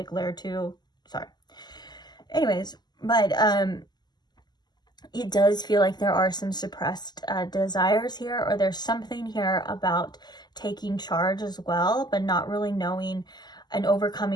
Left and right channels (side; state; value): right; late; 0.21 ms